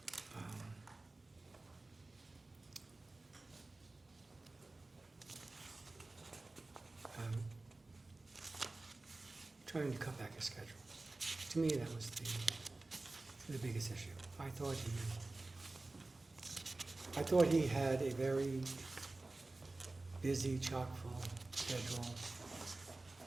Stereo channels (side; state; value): left; quieter; 3.1 dB